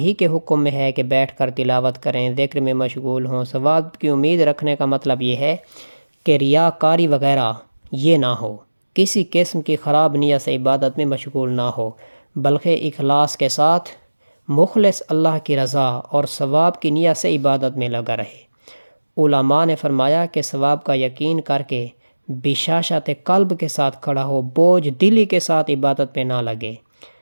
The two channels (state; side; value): inverted; both; correlation -1.00